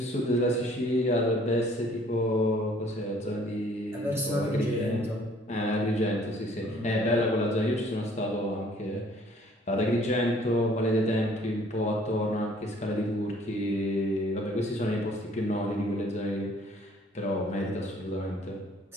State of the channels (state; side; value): normal; both; correlation 0.58